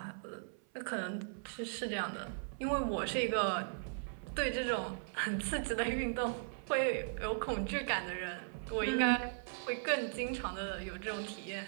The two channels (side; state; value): left; silent; 53 dB below the other